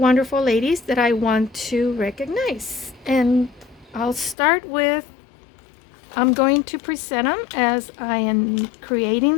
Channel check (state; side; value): drops out; right; at 4.4 s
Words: ladies that I want to recognize. And I'll start with, I'm going to present them as I am creating